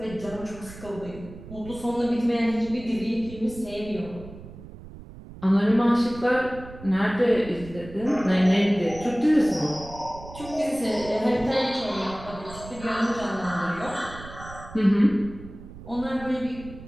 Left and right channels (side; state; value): right; noise; rumble, 15 dB below the sound